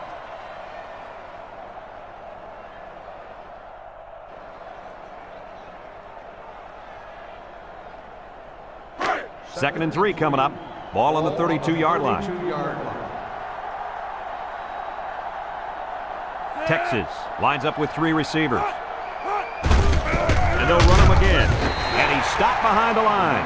Second and 3 coming up. Ball on the 32-yard line. 32-yard line. Texas lines up with 3 receivers. And they'll run him again. And he's stopped behind the line.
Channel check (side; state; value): both; identical; correlation 1.00